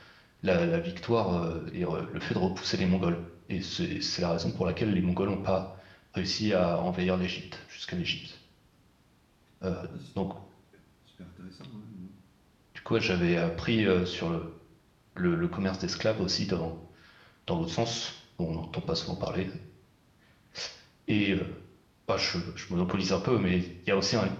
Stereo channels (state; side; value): identical; both; correlation 1.00